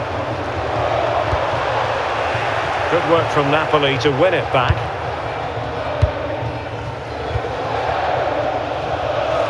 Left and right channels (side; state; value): both; identical; correlation 1.00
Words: Good work from Napoli to win it back.